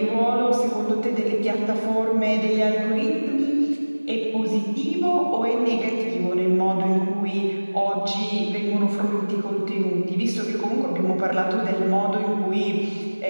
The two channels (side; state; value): both; inverted; correlation -1.00